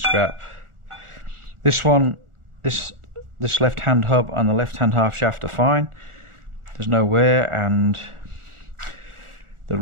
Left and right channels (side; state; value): left; late; 1.4 ms